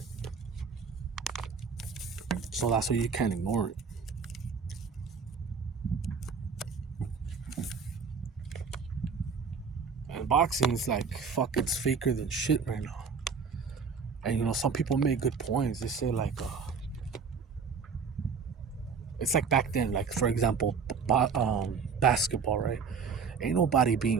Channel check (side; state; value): left; quieter; 5.7 dB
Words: So that's why you can't ignore it. And boxing is like, fuck, it's faker than shit right now. And some people make good points. They say like, it's like back then, like for example, basketball, right? Ain't nobody